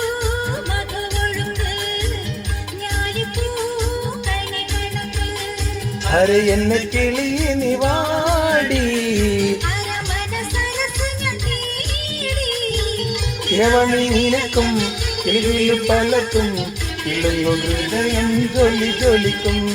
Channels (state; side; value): identical; both; correlation 1.00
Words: അര എന്നെ കിളിയെ നീ വാടി ഇരവണി നിനക്കും കിളിയിൽ പലക്കും ഇളങ്ങു ഹൃദയം ജ്വലി ജ്വലിക്കും.